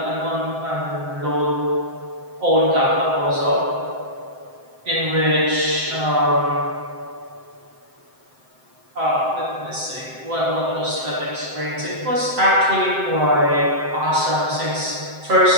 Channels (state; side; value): late; left; 7.7 ms